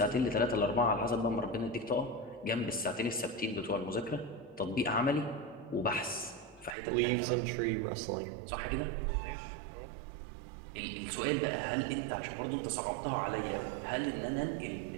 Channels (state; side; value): drops out; left; at 6.8 s